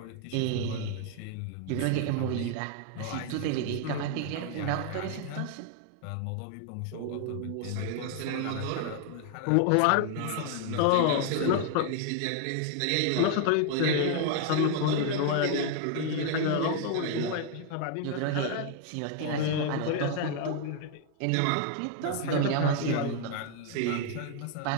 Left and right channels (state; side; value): different; both; correlation 0.00